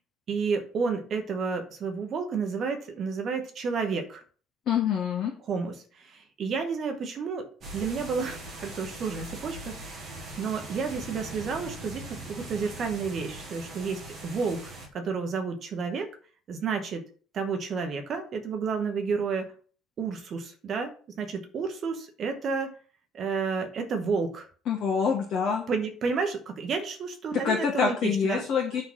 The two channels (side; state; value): both; normal; correlation 0.60